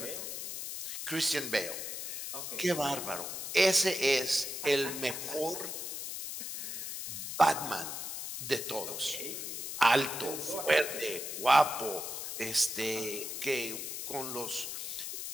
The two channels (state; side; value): noise; left; hiss, 5 dB below the sound